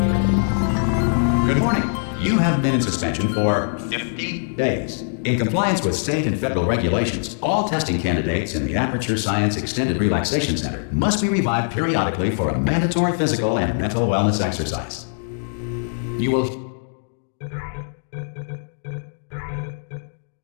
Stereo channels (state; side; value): silent; right; digital silence